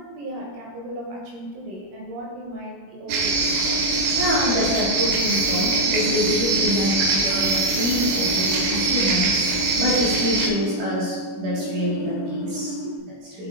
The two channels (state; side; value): late; left; 22 ms